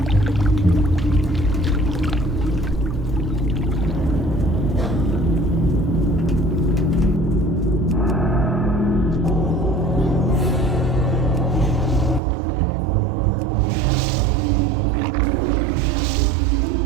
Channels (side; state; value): left; drops out; at 12.2 s